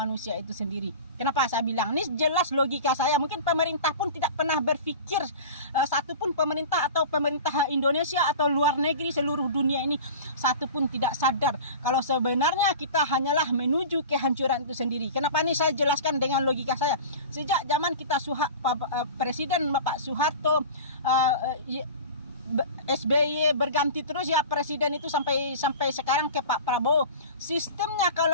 itu sendiri. Kenapa saya bilang? Ini jelas logika saya. Mungkin pemerintah pun tidak pernah berpikir, satupun pemerintah atau pemerintah Indonesia atau luar negeri seluruh dunia ini, satupun tidak sadar kalau sebenarnya kita hanyalah menuju kehancuran itu sendiri. Kenapa ini saya jelaskan dengan logika saya? Sejak zaman kita Presiden Bapak Soeharto, SBY berganti terus ya presiden itu sampai sekarang ke Pak Prabowo. Sistemnya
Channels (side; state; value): both; inverted; correlation -0.35